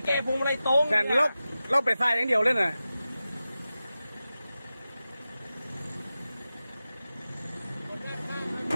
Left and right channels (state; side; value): inverted; both; correlation -0.94